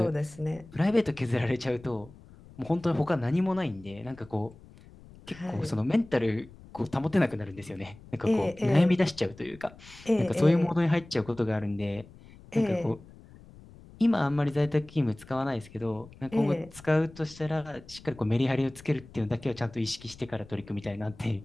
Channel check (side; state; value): left; noise; rumble, 21 dB below the sound